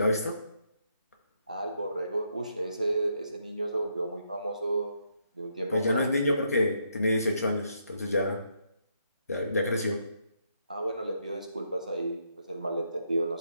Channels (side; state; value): both; inverted; correlation -0.77